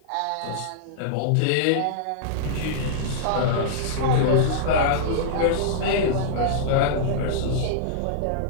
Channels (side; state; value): both; different; correlation -0.02